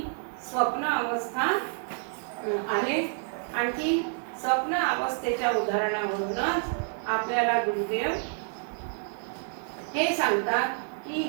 स्वप्न अवस्था आहे. आणखी स्वप्न अवस्थेच्या उदाहरणावरूनच आपल्याला गुरुदेव हे सांगतात की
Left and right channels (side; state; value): left; silent; 56 dB below the other